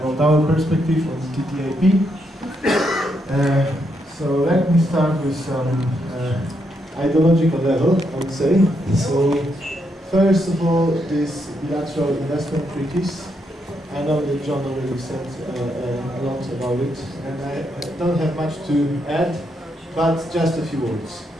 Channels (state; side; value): normal; both; correlation 0.79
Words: our perspective on TTIP. So let me start with some ideological level, I would say. So first of all, this bilateral investment treaties. I know that John already said a lot about it, and I don't have much to add, but just a few words.